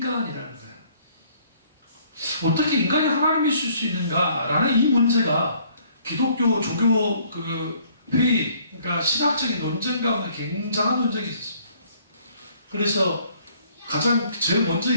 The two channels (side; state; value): both; inverted; correlation -0.61